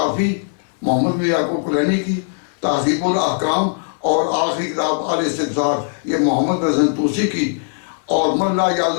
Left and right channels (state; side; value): silent; right; 60 dB below the other